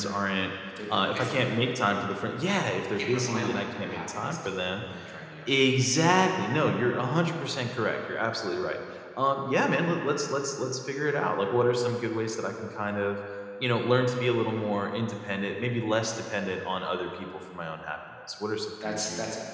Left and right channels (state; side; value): identical; both; correlation 1.00